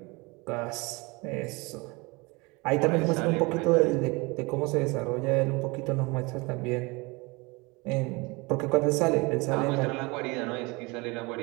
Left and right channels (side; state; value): left; quieter; 26.0 dB